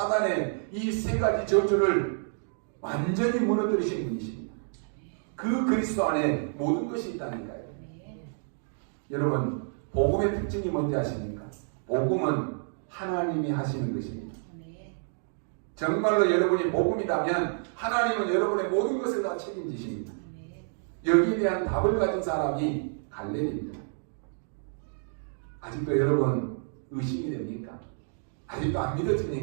이 세 가지 저주를 완전히 무너뜨리신 분이십니다. 그 그리스도 안에 모든 것이 있다니까요. 여러분, 복음의 특징이 뭔지 아십니까? 복음은 하나님이 하시는 것입니다. 정말로 여러분이 복음이라면 하나님은 여러분의 모든 것을 다 책임지십니다. 여기에 대한 답을 가진 사람이 갈렙입니다. 아직도 여러분 의심이 됩니까? 아직도 안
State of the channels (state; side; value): silent; left; digital silence